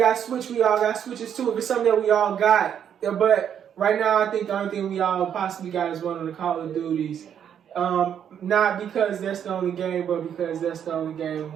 Switch, we all got Switches too. If it's something that we all got, yeah, but right now, I think the only thing we all possibly got is one of the Call of Duties. Not because that's the only game, but because that's the only game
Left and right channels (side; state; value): left; quieter; 8.8 dB